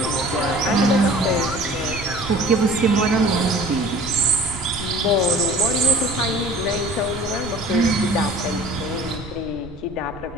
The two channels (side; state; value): right; noise; rumble, 16 dB below the sound